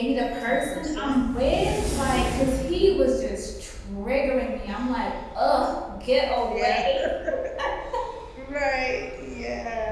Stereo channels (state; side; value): identical; both; correlation 1.00